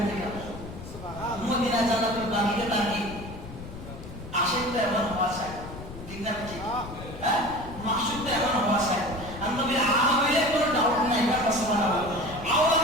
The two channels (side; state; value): left; noise; rumble, 13 dB below the sound